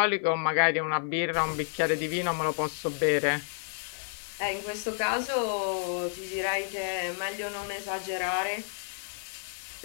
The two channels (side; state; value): right; silent; digital silence